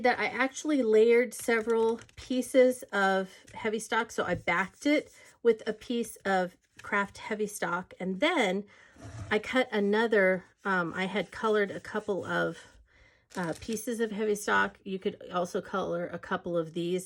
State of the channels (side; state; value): both; identical; correlation 1.00